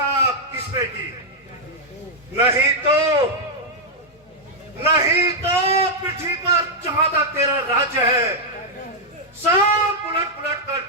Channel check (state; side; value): normal; both; correlation -0.03